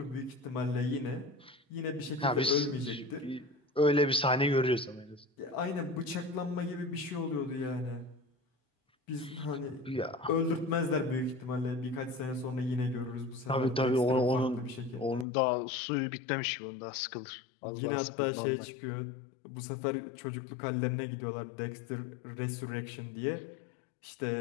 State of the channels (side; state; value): right; drops out; at 15.2 s